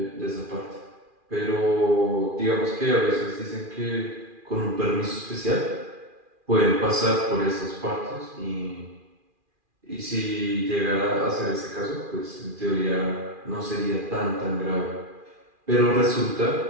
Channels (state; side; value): late; left; 2.4 ms